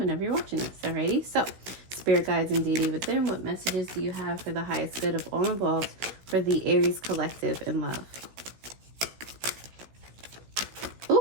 you're watching this. Alrighty. So, spirit guides and deity within, what messages do you have for the highest good of all involved for the Aries collective in love?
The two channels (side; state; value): left; late; 16 ms